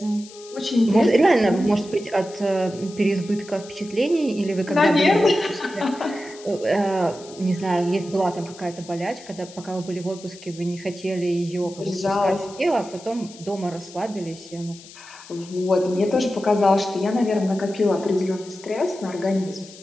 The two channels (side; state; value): left; noise; hiss, 19 dB below the sound